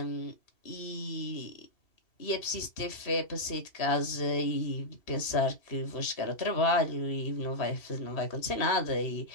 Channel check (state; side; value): late; right; 3.1 ms